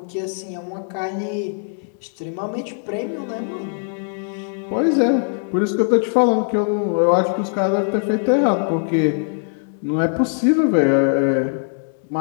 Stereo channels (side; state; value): right; silent; digital silence